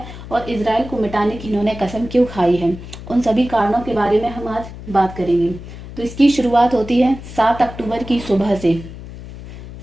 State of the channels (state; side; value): noise; left; hum, 13 dB below the sound